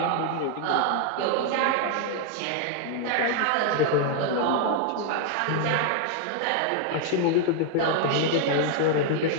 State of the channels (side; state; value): both; different; correlation 0.00